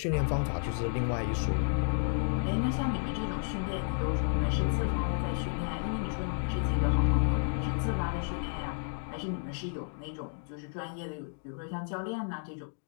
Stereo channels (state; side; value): silent; right; digital silence